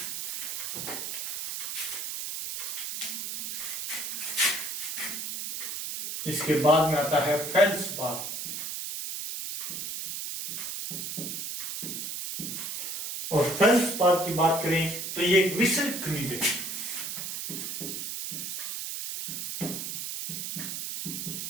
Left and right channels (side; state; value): right; noise; hiss, 4 dB below the sound